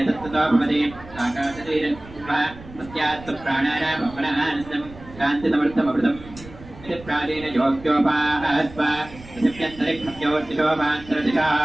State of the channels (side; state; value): right; noise; rumble, 18 dB below the sound